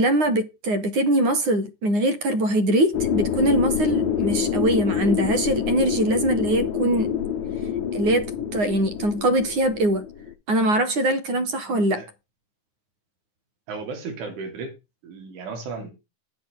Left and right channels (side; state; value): left; late; 9.7 ms